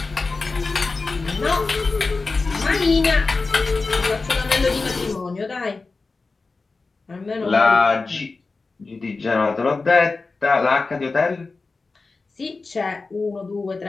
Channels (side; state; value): right; quieter; 3.9 dB